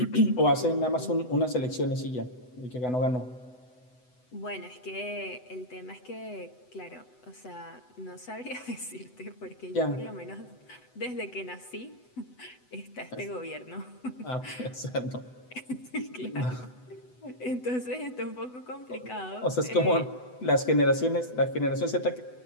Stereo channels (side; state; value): right; late; 8.0 ms